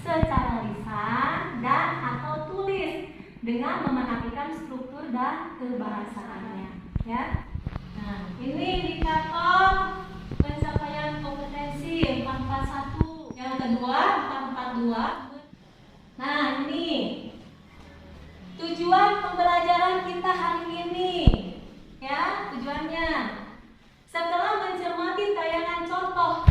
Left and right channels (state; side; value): identical; both; correlation 1.00